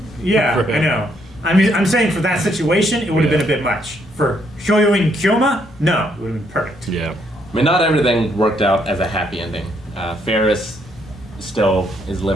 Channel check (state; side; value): normal; both; correlation 0.72